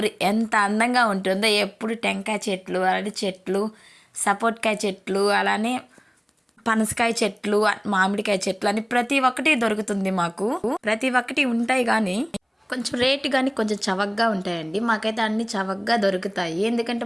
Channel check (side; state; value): both; identical; correlation 1.00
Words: ఎంత అందంగా ఉంటుందో. ఎప్పుడు టెంకాయ చెట్లు, అరటి చెట్లు, సపోర్ట్కాయ చెట్లు, అలానే పనసకాయ చెట్లు, మామిడికాయ చెట్లు అని ప్రతి ఒక్కటి దొరుకుతుంది మాకు. ప్రతి ఒక్కటి ఉంటాయి కానీ కొంచెం రేటు కానీ కొంచెం చవకగా ఉంటాయండి. మాకైతే అన్ని చవకగా దొరుకుతాయి, ఎందుకంటే